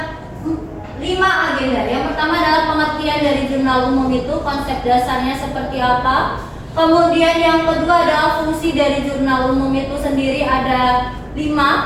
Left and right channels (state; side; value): identical; both; correlation 1.00